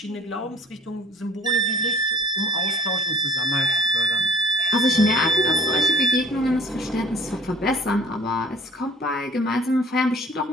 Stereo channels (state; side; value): normal; both; correlation 0.53